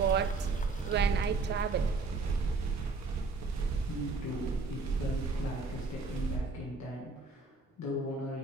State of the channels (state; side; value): quieter; left; 4.1 dB